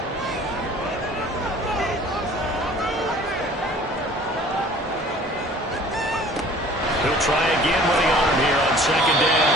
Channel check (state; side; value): normal; both; correlation 0.49